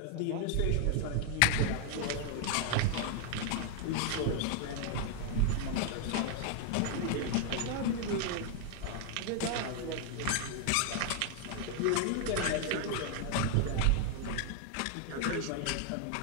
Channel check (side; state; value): both; different; correlation 0.00